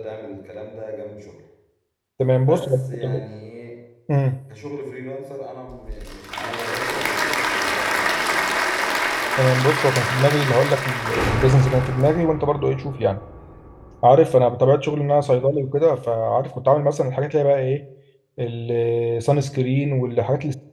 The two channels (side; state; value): both; identical; correlation 1.00